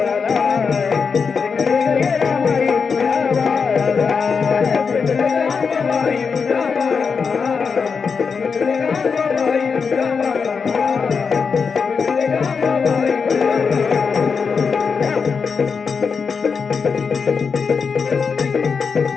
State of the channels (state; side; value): quieter; right; 5.6 dB